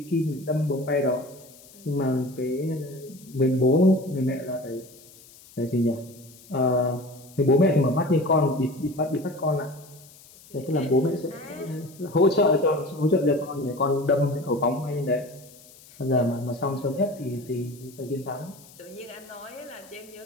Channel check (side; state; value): left; noise; hiss, 23 dB below the sound